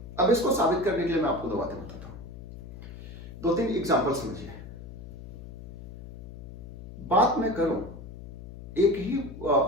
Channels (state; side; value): noise; left; hum, 13 dB below the sound